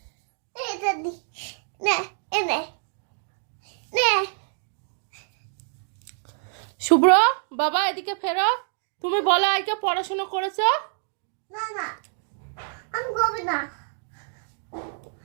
শুভ্র বাবা এদিকে ফেরো, তুমি বলো আজকে পড়াশোনা করেছো? না আমি করব না।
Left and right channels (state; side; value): silent; left; digital silence